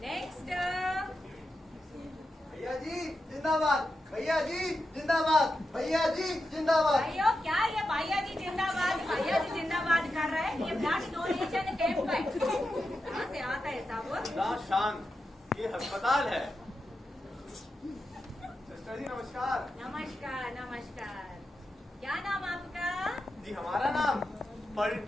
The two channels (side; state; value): both; normal; correlation 0.89